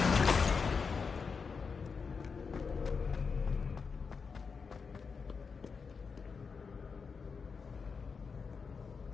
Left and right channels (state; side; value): quieter; right; 5.3 dB